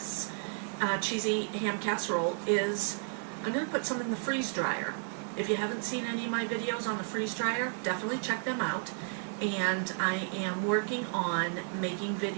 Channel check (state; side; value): silent; left; 56 dB below the other